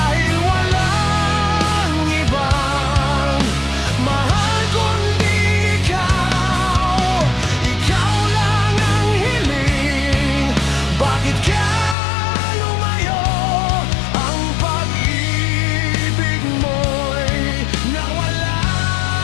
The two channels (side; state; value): right; drops out; at 12.0 s